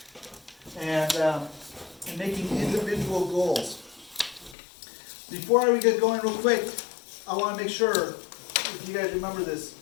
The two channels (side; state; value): right; drops out; at 4.5 s